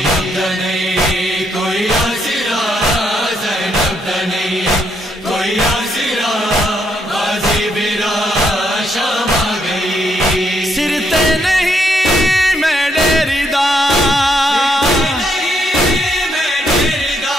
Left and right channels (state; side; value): normal; both; correlation 0.75